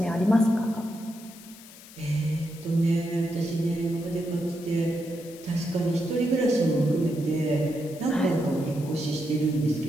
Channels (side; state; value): left; noise; hiss, 19 dB below the sound